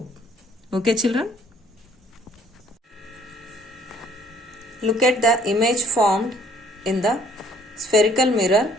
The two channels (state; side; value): normal; both; correlation 0.60